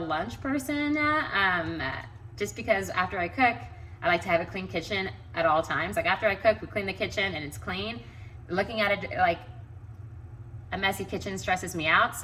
person, just because after I cook, I like to have a clean kitchen at all times. Like after I cook, we clean the kitchen and it's clean. Looking at it like a messy kitchen stresses me out.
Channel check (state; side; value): identical; both; correlation 1.00